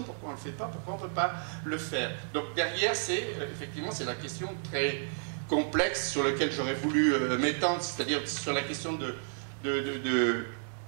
pourquoi on ne le fait pas, pourquoi on ne peut pas le faire. Donc derrière, effectivement, c'est la question très complexe sur laquelle j'aurais voulu m'étendre, c'est-à-dire sur la question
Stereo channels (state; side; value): silent; left; digital silence